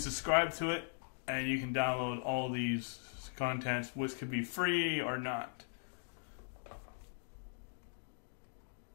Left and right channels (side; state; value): right; silent; digital silence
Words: to it, and you can download all these contents, which could be free or not.